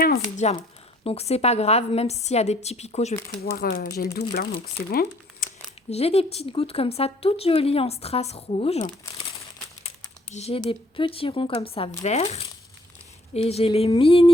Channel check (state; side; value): normal; both; correlation 0.61